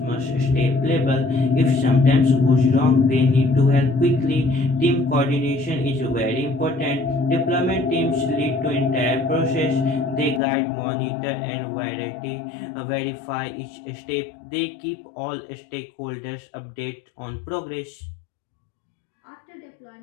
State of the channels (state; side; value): drops out; right; at 10.4 s